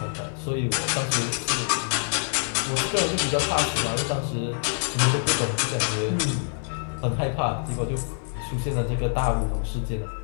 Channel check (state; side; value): silent; right; digital silence